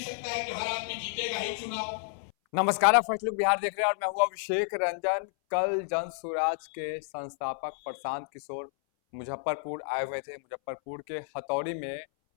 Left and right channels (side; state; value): right; silent; 57 dB below the other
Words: है कि हर आदमी जीतेगा ही चुनाव। नमस्कार, आप फर्स्ट लुक बिहार देख रहे हैं और मैं हूं अभिषेक रंजन। कल जन स्वराज के संस्थापक प्रशांत किशोर मुजफ्फरपुर आए हुए थे। मुजफ्फरपुर के हथौड़ी में